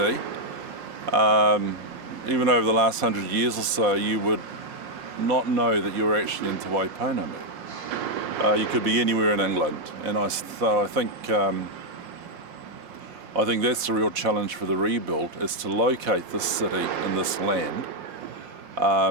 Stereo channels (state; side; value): late; left; 5.6 ms